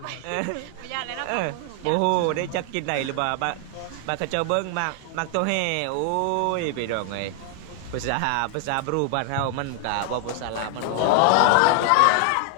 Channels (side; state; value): both; different; correlation 0.00